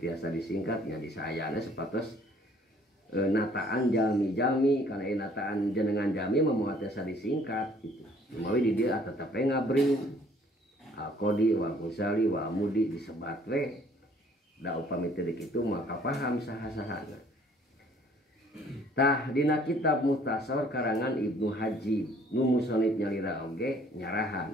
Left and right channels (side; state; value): both; normal; correlation 0.58